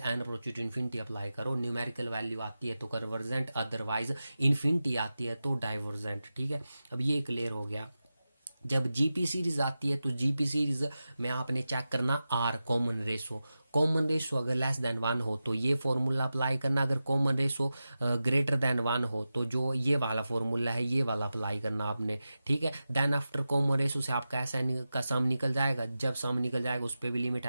approach to infinity apply करो। न्यूमेरिकल वैल्यू आती है तो कन्वर्जेंट, अदरवाइज इन्फिनिटी आती है तो डाइवर्जेंट, ठीक है। अब ये क्लियर हो गया। जब जीपी सीरीज आती है तो जीपी सीरीज में आपने चेक करना R common ratio, common ratio अगर लेस देन 1 हो तो ये फॉर्मूला अप्लाई करना, अगर कॉमन रेशो ग्रेटर देन 1 हो तो जो ये वाला फॉर्मूला है ये वाला अप्लाई करना आपने, ठीक है। देन आफ्टर कॉमन रेशो से आपका ऐसा का सम निकल जाएगा, जब सम निकल जाएगा उस पर भी limit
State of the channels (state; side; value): inverted; both; correlation -0.93